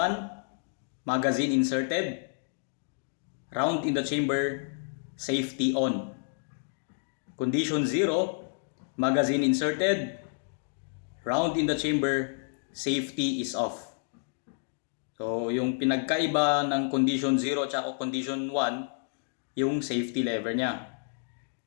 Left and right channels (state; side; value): silent; right; digital silence